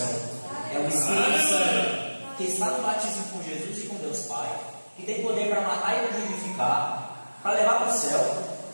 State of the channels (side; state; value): both; inverted; correlation -1.00